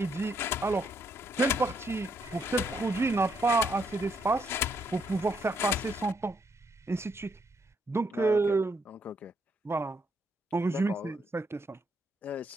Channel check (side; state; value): both; normal; correlation 0.74